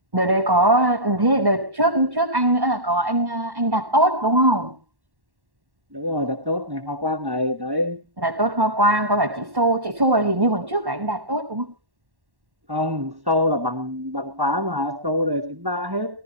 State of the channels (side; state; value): left; late; 1.1 ms